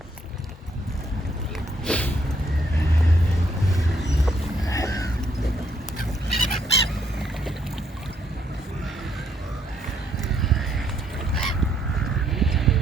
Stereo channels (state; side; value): normal; both; correlation 0.71